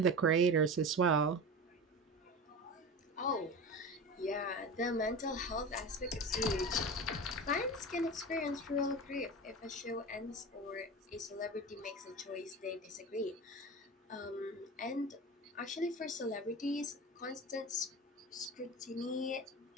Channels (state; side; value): normal; both; correlation 0.29